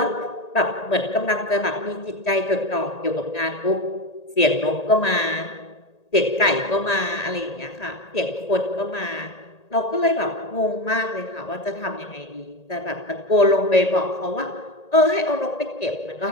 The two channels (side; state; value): right; late; 1.8 ms